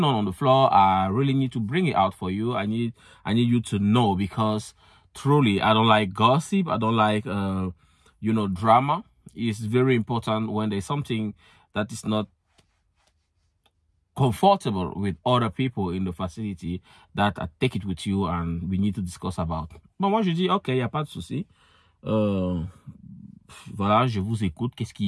on the floor, I really need to bring it out for you. I need you to know, because truly, I don't like gossip. I don't like, you know, drama. It's very important when there's something that is not comfortable with other people in the facility, that I take it with you and we need to discuss about. Bon, moi, je dis, OK, il n'y a pas de souci. Voilà, je vous écoute. Qu'est-ce qu'il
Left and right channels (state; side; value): identical; both; correlation 1.00